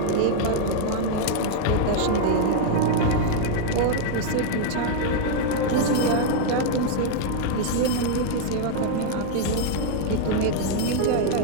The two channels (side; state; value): both; different; correlation 0.00